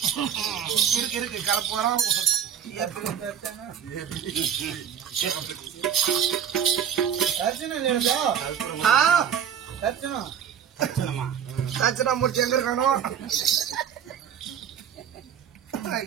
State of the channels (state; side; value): quieter; left; 8.7 dB